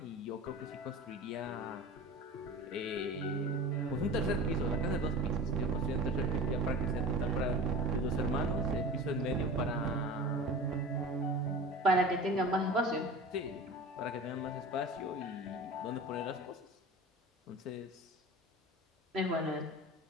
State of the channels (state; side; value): normal; both; correlation 0.35